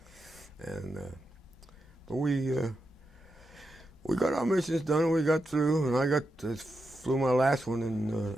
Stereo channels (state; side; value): normal; both; correlation 0.87